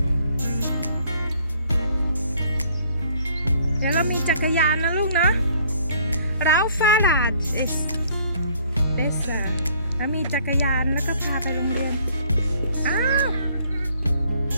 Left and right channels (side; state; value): both; inverted; correlation -0.60